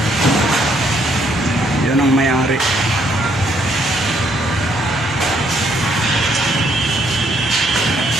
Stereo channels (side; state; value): both; normal; correlation 0.70